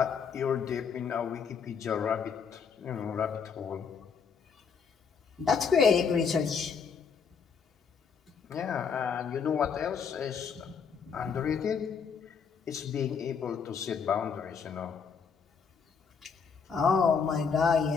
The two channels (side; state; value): right; quieter; 6.2 dB